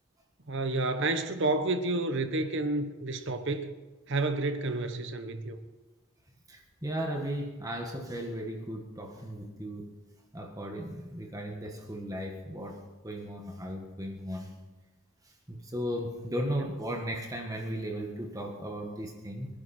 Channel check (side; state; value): both; normal; correlation 0.36